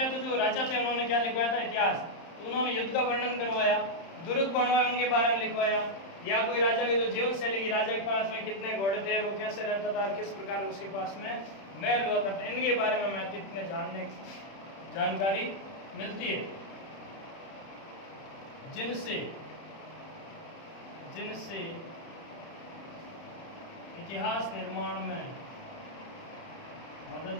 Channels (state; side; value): late; right; 31 ms